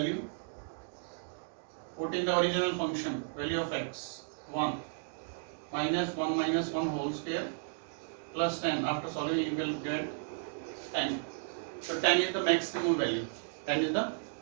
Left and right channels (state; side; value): silent; left; digital silence